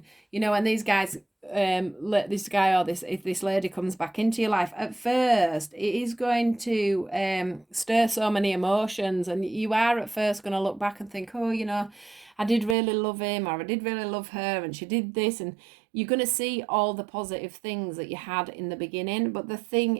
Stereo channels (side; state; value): left; drops out; at 12.8 s